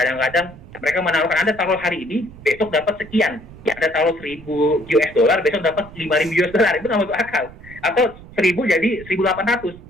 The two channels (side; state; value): right; noise; rumble, 18 dB below the sound